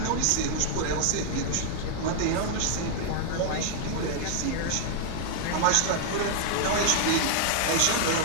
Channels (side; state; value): both; different; correlation 0.00